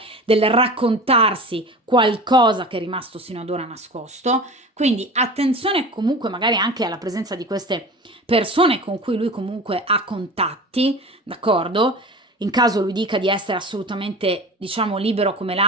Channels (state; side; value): normal; both; correlation 0.34